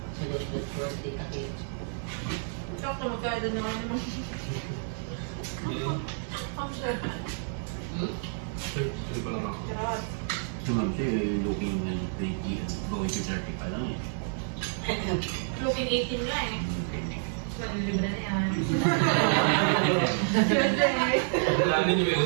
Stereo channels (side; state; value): left; silent; 58 dB below the other